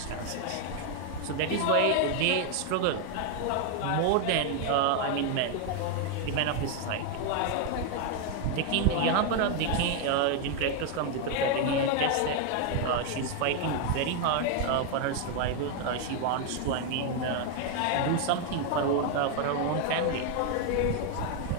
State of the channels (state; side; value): different; both; correlation 0.01